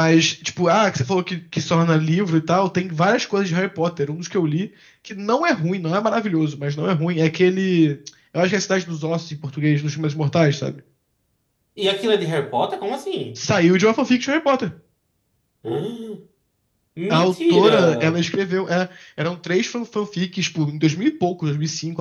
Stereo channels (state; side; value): identical; both; correlation 1.00